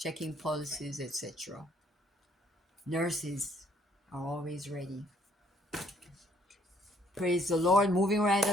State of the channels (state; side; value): normal; both; correlation 0.65